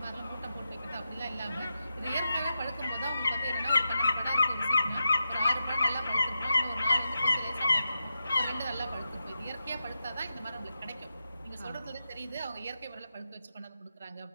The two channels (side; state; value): both; inverted; correlation -0.89